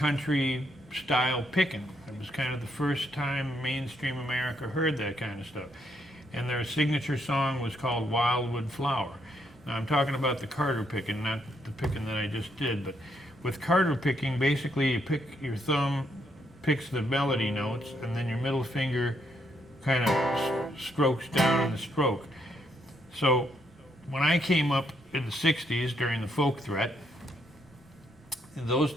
style picking. It was kind of the first time mainstream America heard that kind of stuff. And their signature song was called Wildwood Flower. Now I'm talking about the Carter picking, not the picking that I just did, but with Carter picking, basically you pick, your thumb picks the melody notes, and then your middle finger kind of strokes down in the stroke. So when I came up in the 60s during the folk threat, in those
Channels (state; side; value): normal; both; correlation 0.75